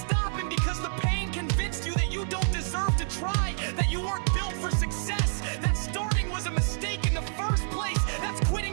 because the pain convinced you that you don't deserve to try, that you weren't built for success, that starting was a mistake in the first place. That's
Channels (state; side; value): silent; left; 59 dB below the other